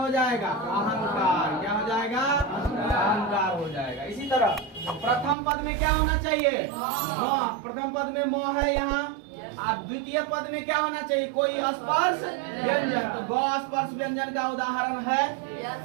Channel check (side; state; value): left; drops out; at 5.4 s